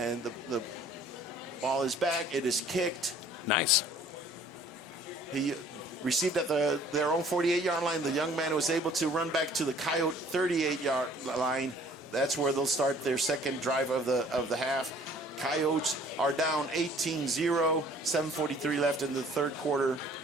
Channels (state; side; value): normal; both; correlation 0.54